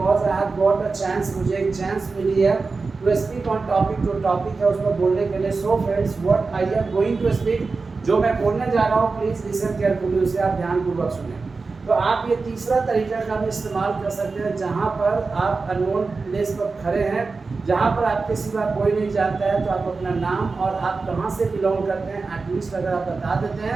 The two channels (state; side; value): quieter; left; 4.2 dB